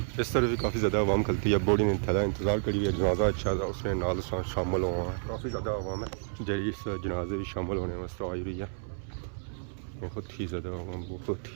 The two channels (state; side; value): silent; left; 57 dB below the other